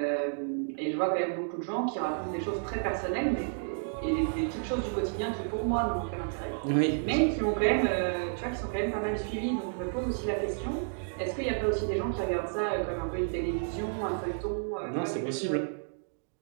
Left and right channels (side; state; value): left; silent; digital silence